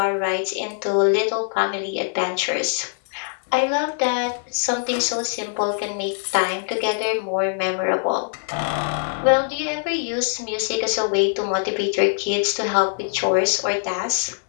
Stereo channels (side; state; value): right; silent; digital silence